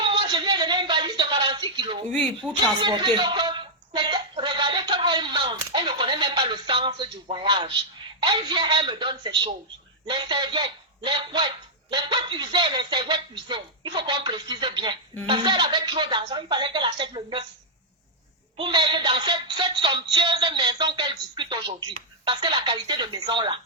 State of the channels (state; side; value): normal; both; correlation -0.06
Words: moi, je lui ai donné une valise de 46 kilos. Oui, pour transporter. Regardez comme elle mange. Elle ne connaît même pas le sens du voyage. Elle vient, elle me donne ces choses. Les serviettes, les couettes usées, les serviettes usées. Il faut qu'on précise bien. Parce qu'elle avait trop d'argent, il fallait qu'elle achète le neuf. Pour mettre dans cette somptueuse maison qu'elle discute aujourd'hui. Parce que la qualité de maison là,